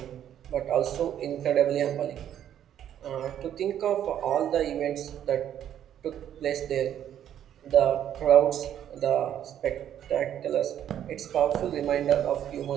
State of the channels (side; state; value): left; quieter; 10.4 dB